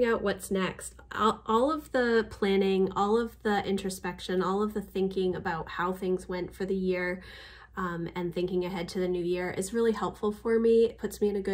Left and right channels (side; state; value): both; identical; correlation 1.00